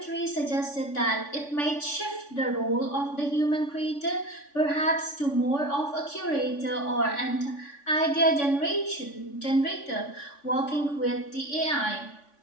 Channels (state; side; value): late; right; 3.5 ms